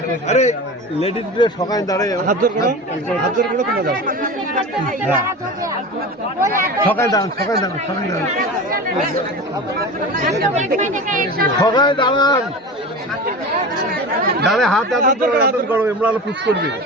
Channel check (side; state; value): both; normal; correlation 0.30